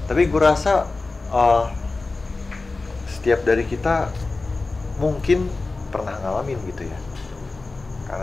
Tapi gue rasa setiap dari kita mungkin pernah ngalamin gitu ya.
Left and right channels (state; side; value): quieter; right; 3.6 dB